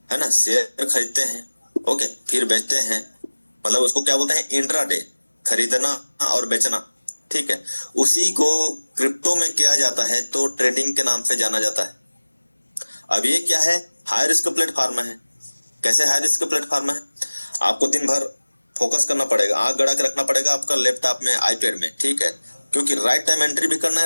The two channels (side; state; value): both; inverted; correlation -1.00